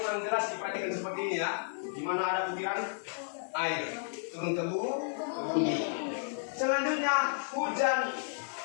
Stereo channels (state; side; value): silent; right; 56 dB below the other